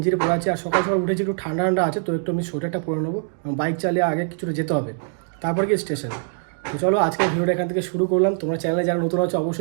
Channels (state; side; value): silent; left; digital silence